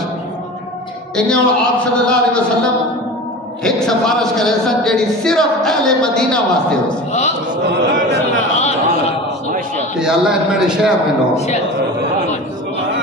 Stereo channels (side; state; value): both; normal; correlation 0.33